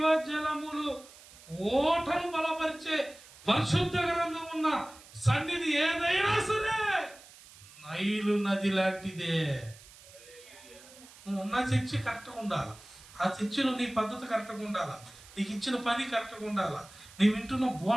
ఓటను బలపరిచే పరిశుద్ధ గ్రంథం ఉన్న సన్నిధి ఏదైనా సరే నైలు నది లాంటిదే. నువ్వు ఉన్న చర్చి కరెక్ట్గా ఉండాలి. ఆ చర్చిలో నీ పద్ధతి కరెక్ట్గా ఉండాలా, నీకు ఇచ్చిన పని కరెక్ట్గా ఉండాలా, నీ వింటున్న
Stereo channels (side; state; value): right; noise; hiss, 21 dB below the sound